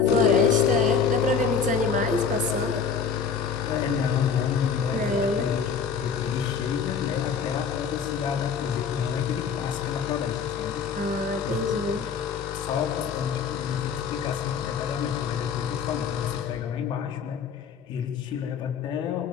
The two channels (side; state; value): right; quieter; 6.2 dB